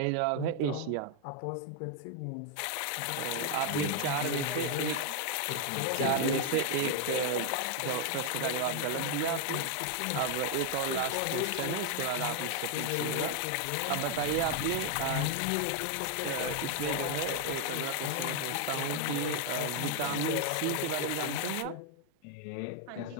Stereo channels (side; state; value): both; different; correlation 0.00